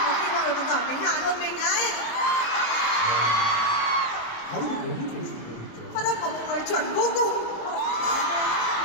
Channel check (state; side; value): late; right; 26 ms